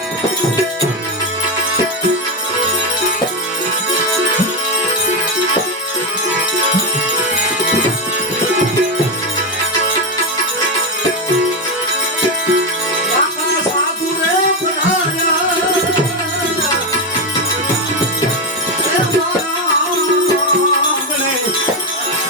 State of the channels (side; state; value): both; normal; correlation 0.09